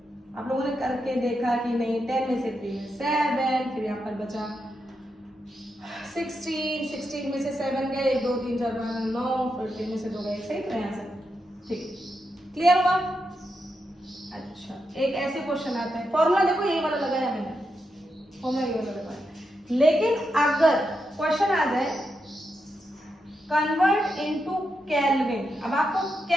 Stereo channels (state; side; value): normal; both; correlation 0.85